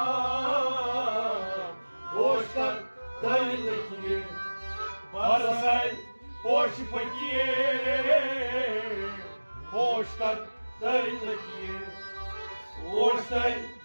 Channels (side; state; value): both; inverted; correlation -1.00